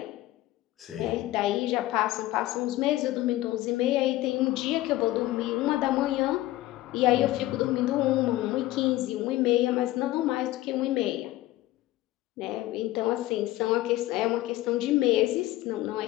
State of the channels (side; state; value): right; quieter; 16.4 dB